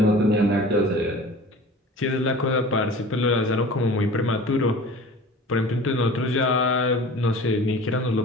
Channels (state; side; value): normal; both; correlation 0.41